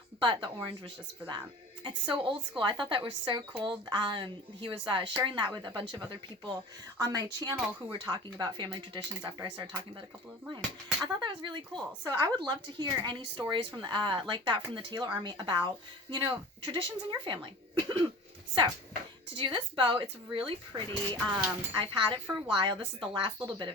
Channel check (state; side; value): normal; both; correlation 0.38